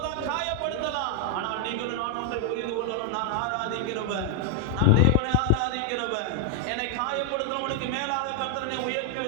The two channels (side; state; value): both; different; correlation 0.00